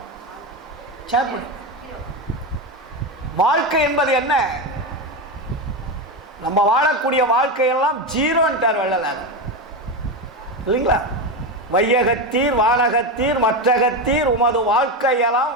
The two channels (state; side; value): normal; both; correlation 0.15